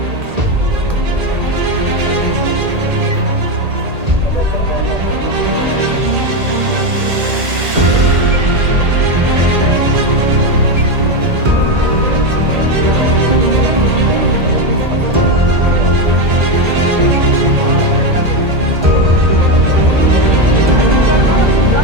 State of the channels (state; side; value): late; left; 1.8 ms